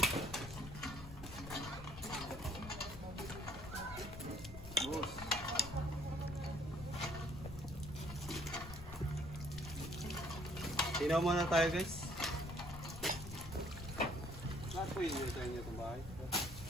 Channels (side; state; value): left; noise; rumble, 12 dB below the sound